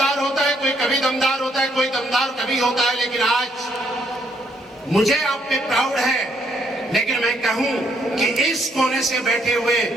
होता है, कोई कभी दमदार होता है, कोई दमदार कभी होता है, लेकिन आज मुझे आप पे प्राउड है। लेकिन मैं कहूं कि इस कोने से बैठे हुए,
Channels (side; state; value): both; normal; correlation 0.71